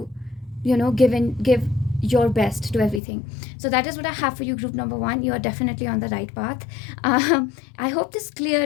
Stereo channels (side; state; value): right; drops out; at 3.0 s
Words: give your best to everything. So that is what I have for you, group number 1. You are definitely on the right path. I hope this